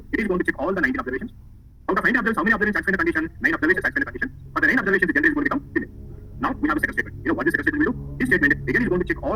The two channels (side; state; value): both; identical; correlation 1.00